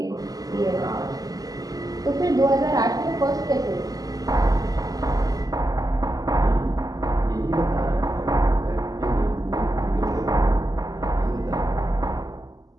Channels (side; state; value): left; late; 0.17 ms